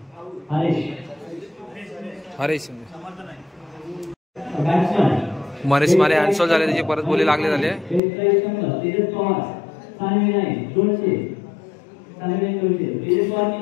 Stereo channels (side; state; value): right; drops out; at 8.0 s